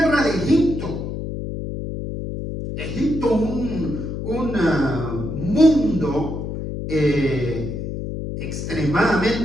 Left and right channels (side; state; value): left; noise; hum, 5 dB below the sound